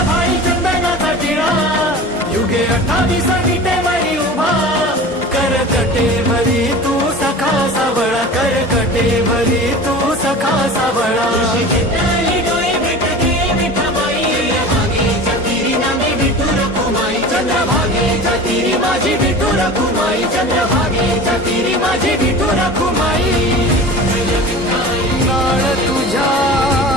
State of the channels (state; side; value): normal; both; correlation 0.36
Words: भाई चंदनाचा टिळा, युगे 28 विटे मरी उभा. करकटे भरी तू सखा सावळा, करकटे भरी तू सखा सावळा. चंद्रभागेच्या तीरी माझी विठू रखुमाई, चंद्रभागेच्या तीरी माझी विठू रखुमाई.